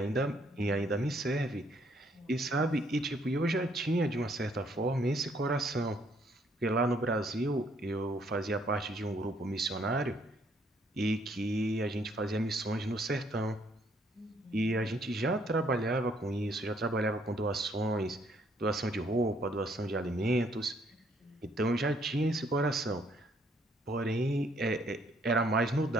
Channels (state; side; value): normal; both; correlation 0.67